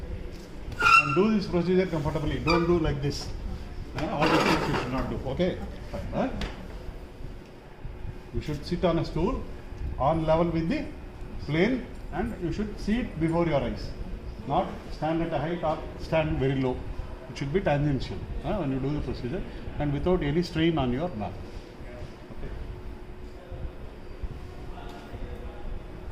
And do this procedure comfortably. Don't do like this. All the things you should not do. Okay? Fine. You should sit on a stool on level with the plane, and you should see it before your eyes. Not stand at a height or stand very low. It should be tangential when you do the procedure and without any strain on your back. Okay.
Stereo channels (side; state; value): both; identical; correlation 1.00